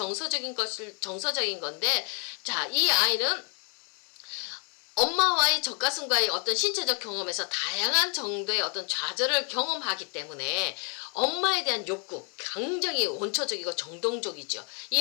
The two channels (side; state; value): right; quieter; 37.3 dB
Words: 건데, 자, 이 아이는 엄마와의 젖가슴과의 어떤 신체적 경험에서 다양한 정도의 어떤 좌절을 경험하기 때문에 엄마에 대한 욕구, 굉장히 원초적이고 정동적이죠.